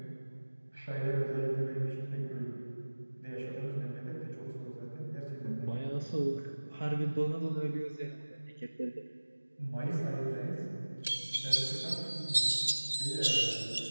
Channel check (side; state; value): both; inverted; correlation -1.00